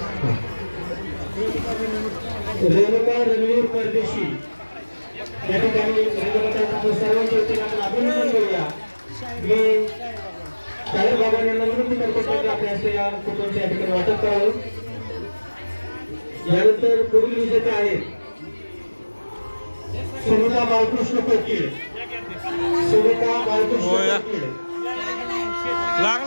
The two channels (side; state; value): both; inverted; correlation -1.00